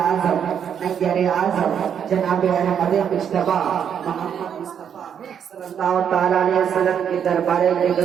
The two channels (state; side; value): quieter; left; 8.2 dB